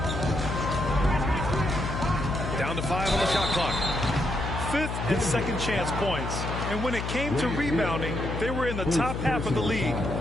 Down to 5 on the shot clock. 5th and second chance points. And when it came to rebounding, they were in the top half of the league.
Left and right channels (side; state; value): left; noise; hum, 4 dB below the sound